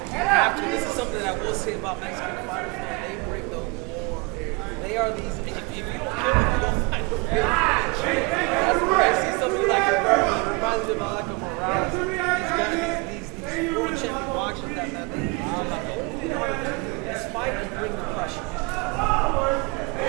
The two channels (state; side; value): quieter; left; 28.1 dB